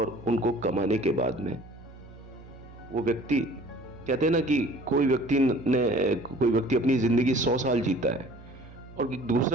उनको कमाने के बाद में वो व्यक्ति, कहते हैं ना कि कोई व्यक्ति अपनी जिंदगी 100 साल जीता है और एक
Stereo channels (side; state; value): right; noise; hum, 19 dB below the sound